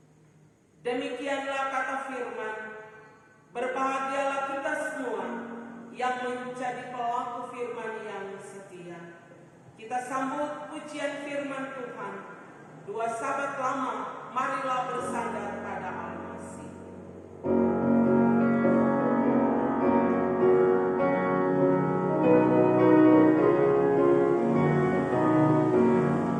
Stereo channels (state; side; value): identical; both; correlation 1.00